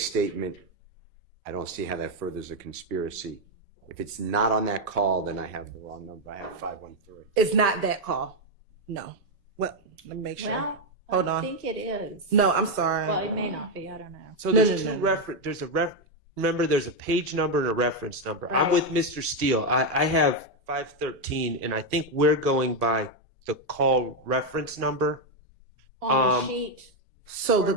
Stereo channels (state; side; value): normal; both; correlation 0.04